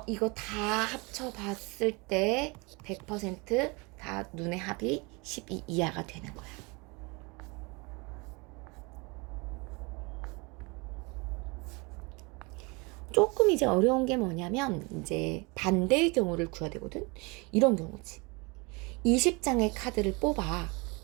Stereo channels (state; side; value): quieter; left; 28.0 dB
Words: 이거 다 합쳐봤을 때 100% 눈의 합이 12 이하가 되는 거야. 조금 이제 어려운 게 뭐냐면 이제 반대의 경우를 구해야 되거든. 이런 경우지. 20장의 카드를 뽑아.